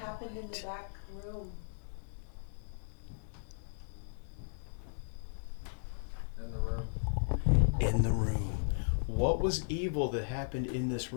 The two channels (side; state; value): right; silent; 54 dB below the other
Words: in the back room? In the room. In the room. What was evil that happened in this